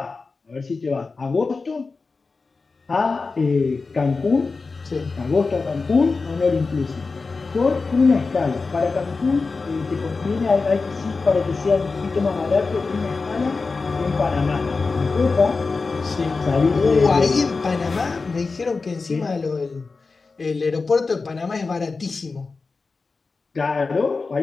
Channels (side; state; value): right; quieter; 4.2 dB